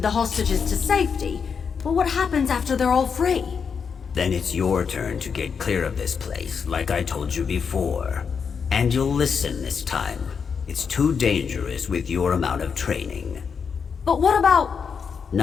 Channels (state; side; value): quieter; right; 6.3 dB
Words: the hostages to safety, but what happens after they're all free? Then it's your turn to get clear of this place, like I told you before. And you'll listen this time. It's too dangerous with your amount of training. But what about...